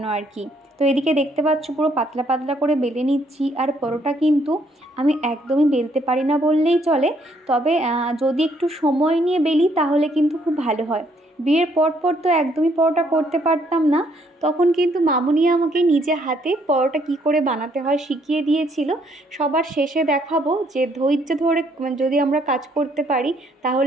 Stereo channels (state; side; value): normal; both; correlation 0.69